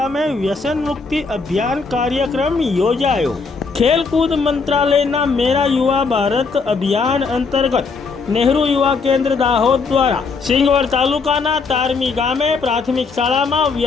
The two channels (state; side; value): quieter; right; 4.6 dB